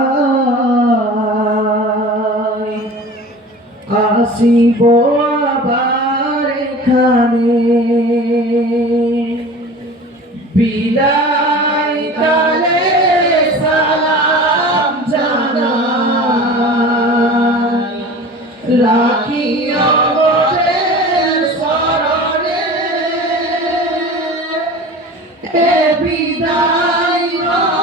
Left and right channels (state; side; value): normal; both; correlation 0.38